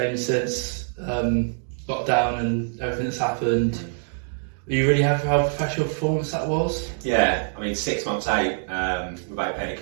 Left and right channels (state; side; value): silent; left; digital silence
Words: since lockdown and everything that's happened. Are you really happy how professional performance that was? Yeah, I mean 6 months out without playing a